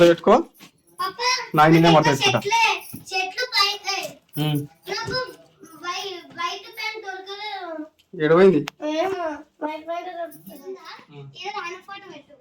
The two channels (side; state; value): both; identical; correlation 1.00